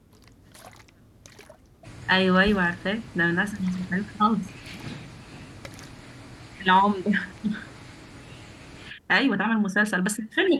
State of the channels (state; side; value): identical; both; correlation 1.00